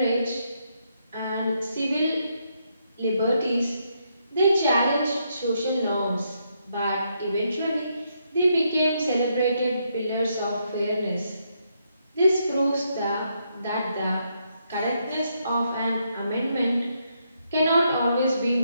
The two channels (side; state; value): both; inverted; correlation -0.77